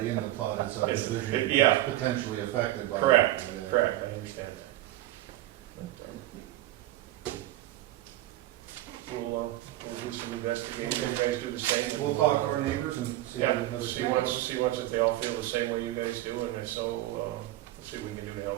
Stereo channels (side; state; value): left; quieter; 15.6 dB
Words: in the plotted subdivision Yeah. is potentially affected by Correct, it. correct, I understand that. We'll do some investigating, you guys do the same. We'll talk to our neighbors and see Yeah, what see once if they all feel the same way you guys do, and if so, we'll see what we can do to